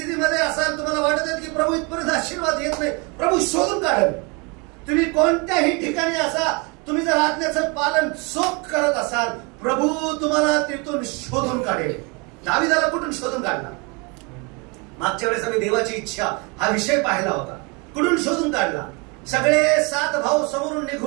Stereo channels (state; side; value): quieter; left; 30.4 dB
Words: असाल, तुम्हाला वाटत आहे की प्रभू इथपर्यंत आशीर्वाद येत नाही, प्रभू शोधून काढेल. तुम्ही कोणत्याही ठिकाणी असा, तुम्ही जर आज्ञेचं पालन चोख करत असाल, प्रभू तुम्हाला तिथून शोधून काढेल. दाविदाला कुठून शोधून काढला? मागच्या वेळेस आम्ही देवाची इच्छा हा विषय पाहिला होता. कुठून शोधून काढला? सगळे 7 भाऊ समोरून